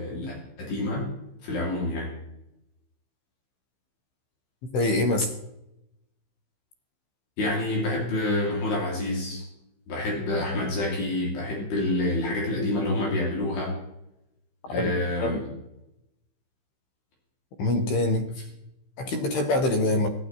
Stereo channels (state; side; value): late; right; 15 ms